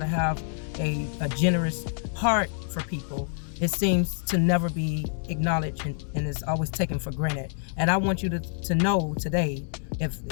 have a generous heart for people, it seems to never be acknowledged and is always taken for granted. And I want you to know today,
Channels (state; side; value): silent; right; digital silence